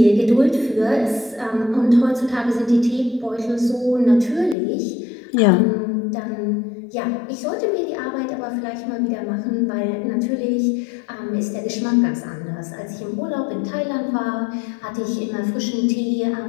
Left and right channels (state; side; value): drops out; right; at 4.5 s